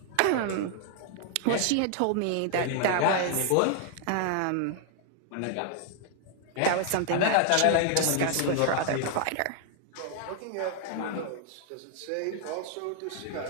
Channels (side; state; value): both; different; correlation 0.00